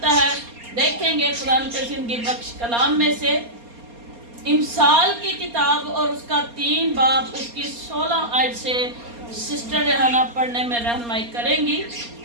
है। देखेंगे कुरान के जिंदगी बख्श कलाम में से इमसाल की किताब और उसका 3 बाब उसकी 16 आयत से सिस्टर रेहाना पढ़ने में रहनुमाई करेंगी।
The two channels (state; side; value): late; left; 4.3 ms